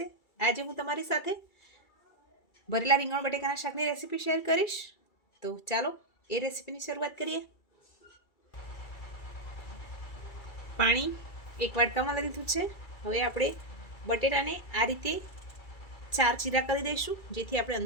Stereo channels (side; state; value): right; late; 2.3 ms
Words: આજે હું તમારી સાથે ભરેલા રીંગણ બટેકાના શાકની રેસીપી શેર કરીશ। તો ચાલો એ રેસીપીની શરૂઆત કરીએ। પાણી એક વાટકામાં લીધું છે। હવે આપણે બટેટાને આ રીતે 4 ચીરા કરી દઈશું, જેથી આપણે